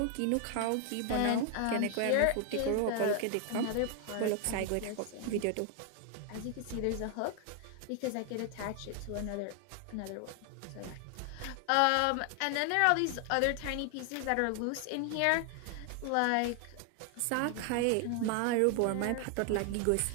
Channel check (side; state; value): both; different; correlation 0.00